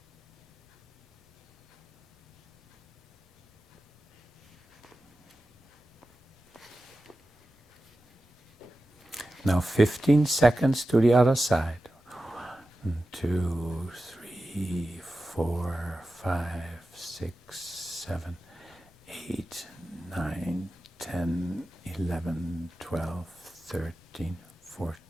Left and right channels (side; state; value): both; normal; correlation 0.93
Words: Now 15 seconds to the other side. 1, 2, 3, 4, 5, 6, 7, 8, 9, 10, 11, 12, 13,